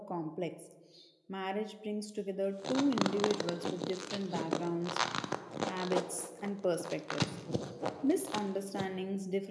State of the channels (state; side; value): identical; both; correlation 1.00